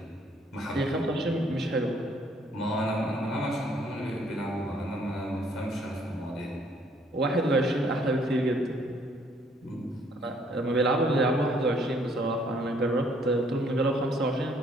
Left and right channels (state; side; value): normal; both; correlation 0.64